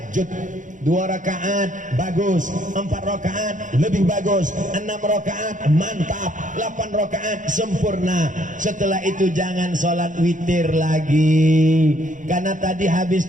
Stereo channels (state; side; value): late; left; 0.37 ms